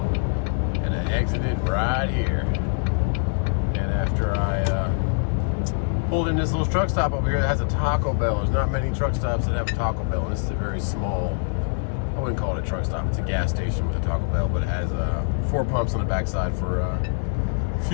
And I exited right here. And after I pulled in this little truck stop over here that has a Taco Bell. There's not many truck stops that have a Taco Bell, and this is a very small, I wouldn't call it a truck stop, it's a gas station with a Taco Bell, but it has 4 pumps on the backside for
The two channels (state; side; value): silent; right; digital silence